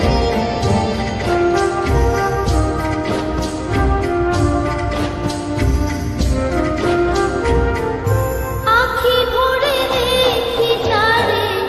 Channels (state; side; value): identical; both; correlation 1.00